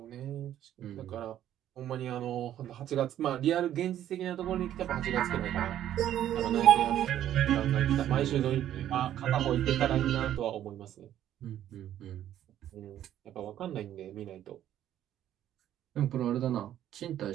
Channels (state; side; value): quieter; left; 11.5 dB